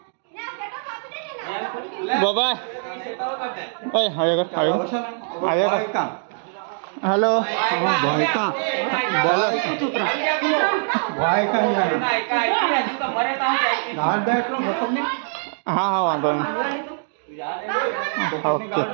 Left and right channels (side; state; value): left; silent; digital silence